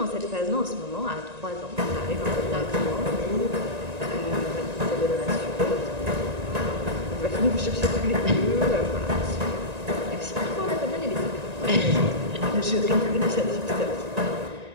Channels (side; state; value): left; late; 1.9 ms